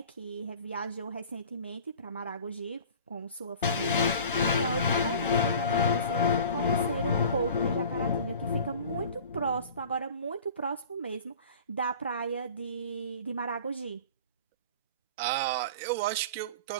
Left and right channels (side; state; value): both; inverted; correlation -0.43